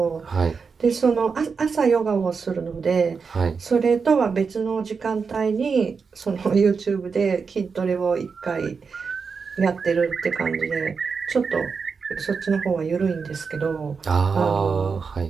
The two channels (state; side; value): quieter; left; 5.3 dB